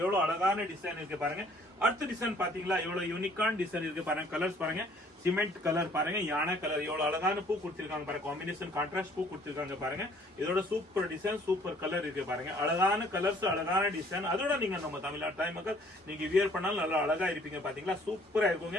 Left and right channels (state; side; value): normal; both; correlation 0.58